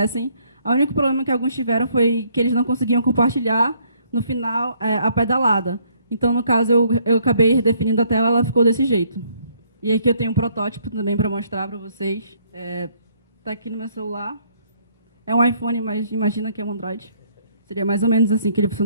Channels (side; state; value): both; inverted; correlation -0.66